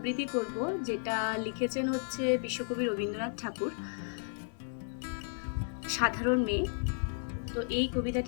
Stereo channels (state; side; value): silent; right; 55 dB below the other